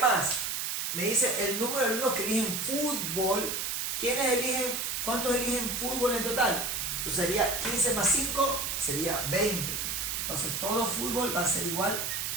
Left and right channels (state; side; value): noise; right; hiss, 2 dB below the sound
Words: Me dice el número de alumnos que eligen fútbol. ¿Quiénes eligen? ¿Cuántos eligen fútbol en total? Entonces sería 15 más 5, sería 20. Entonces todo fútbol va a ser igual